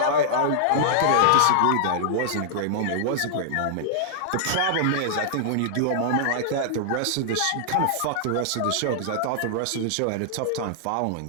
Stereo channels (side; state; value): both; different; correlation -0.01